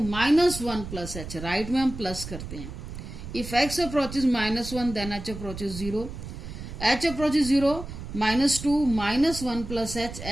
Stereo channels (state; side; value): noise; right; rumble, 10 dB below the sound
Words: -1 + h, right में हम प्लस करते हैं, if x approaches -1 then h approaches 0, h approaches 0 -2 -1 plus